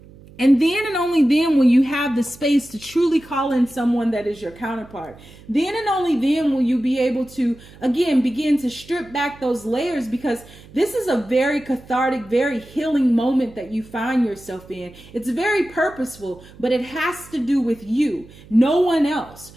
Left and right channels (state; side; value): noise; right; hum, 22 dB below the sound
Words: And then and only then will you have the space to truly call in someone that is your counterpart. Then and only then will you be able to, again, begin to strip back those layers, because this is a very cathartic, very healing moment that you find yourself in. It's very purposeful, but it has to do with you, no one else.